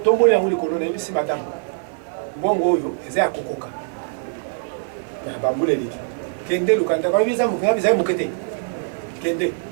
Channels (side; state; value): left; silent; digital silence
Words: il y a un colonel, ici, madame. Bon, yo, et c'est à Kokoka. Il y a un bambou, les lits. Kende, le candidat, quand il y a un mouqueté. Kende.